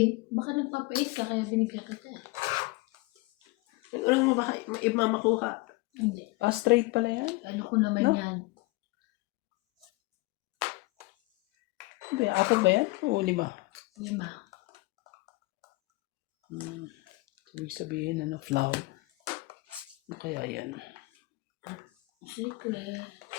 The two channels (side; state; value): right; quieter; 23.5 dB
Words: Baka nagpapa-8 ka kaya binigyan kita. Ulang mo baka mamakuha. Hindi. Ah, straight pala yan? Ano ko naman No? yan. Apat ba yan? O 5? 5. Ibig sabihin, flower. Ano kaya yan? Secret.